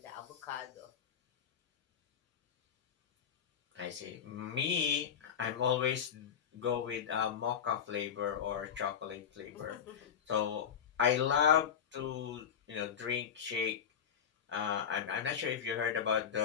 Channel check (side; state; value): right; quieter; 8.0 dB